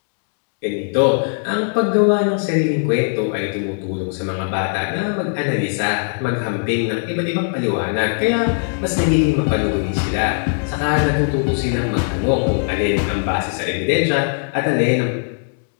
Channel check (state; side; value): silent; right; digital silence